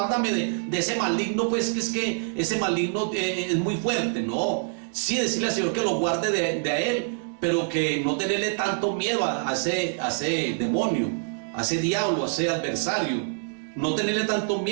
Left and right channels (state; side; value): silent; left; 61 dB below the other